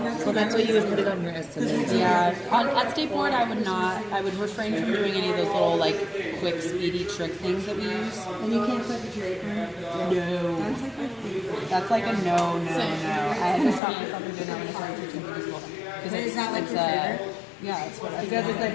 that's why you would put it on your estimate. Yeah, at skateboard I would not. I would refrain from doing any of those little like quick, speedy trick things that we use. And you can't clip your draper. No, that's like a no. I had to stop myself from doing that when I started teaching middle school. Because Is that like it's your favorite? yeah, it's what I Because it's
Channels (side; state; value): right; drops out; at 13.8 s